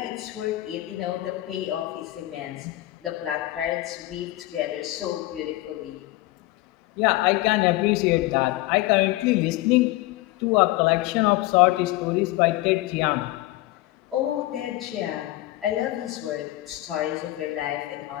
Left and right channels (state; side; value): quieter; right; 18.0 dB